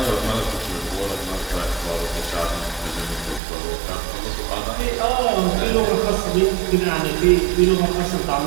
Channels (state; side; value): drops out; left; at 3.4 s